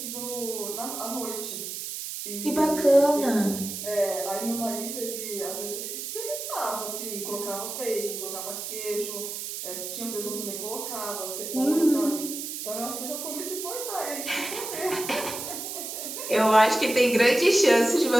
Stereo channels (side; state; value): right; noise; hiss, 6 dB below the sound